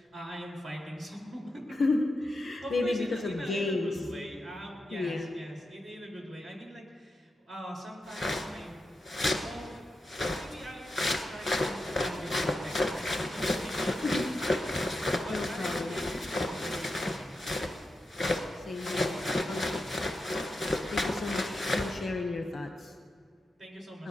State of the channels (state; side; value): normal; both; correlation 0.88